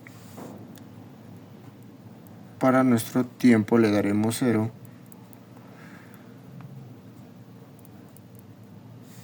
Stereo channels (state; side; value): identical; both; correlation 1.00